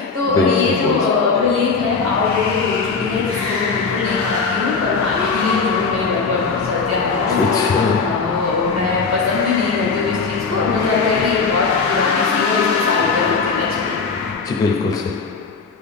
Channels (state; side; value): quieter; right; 4.7 dB